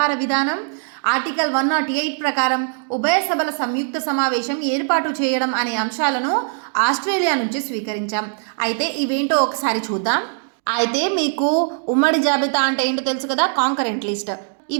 విధానం, ఆర్టికల్ 108 ప్రకారం ఉభయ సభల సంయుక్త సమావేశం ఏర్పాటు చేయడం అనే అంశాలను ఆస్ట్రేలియా నుంచి స్వీకరించాం. అయితే ఇవేంటో ఒకసారి చూద్దాం. అయితే మీకు ఉమ్మడి జాబితా అంటే ఏంటో తెలుసు కదా, కాంకరెంట్ లిస్ట్.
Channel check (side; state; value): left; silent; digital silence